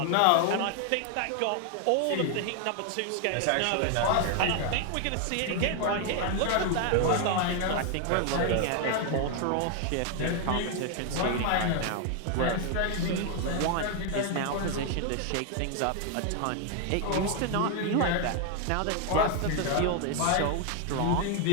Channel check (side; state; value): both; different; correlation 0.00